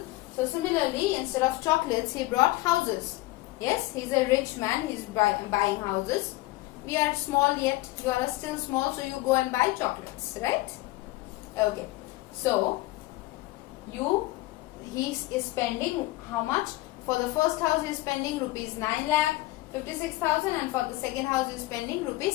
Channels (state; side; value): quieter; right; 19.1 dB